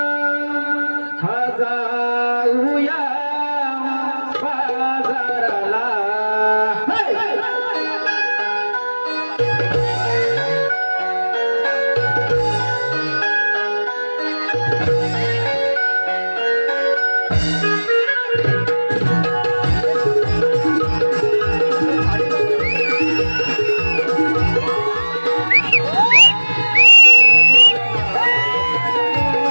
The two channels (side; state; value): both; inverted; correlation -1.00